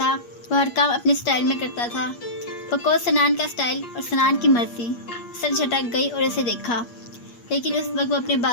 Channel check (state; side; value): late; right; 8.4 ms